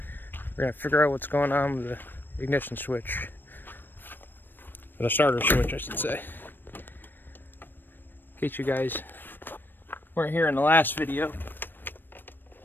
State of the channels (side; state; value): right; late; 0.094 ms